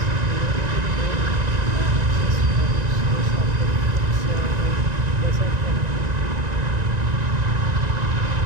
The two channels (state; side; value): late; left; 1.9 ms